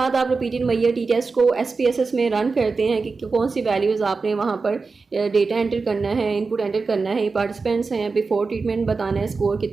आप रिपीटेड मेजर टी टेस्ट को SPSS में रन करते हैं कि कौन सी वैल्यूज़ आपने वहाँ पर डेटा एंटर करना है, इनपुट एंटर करना है, पार्टिसिपेंट्स हैं, बिफोर ट्रीटमेंट बताना है, स्कोर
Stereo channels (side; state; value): left; quieter; 4.3 dB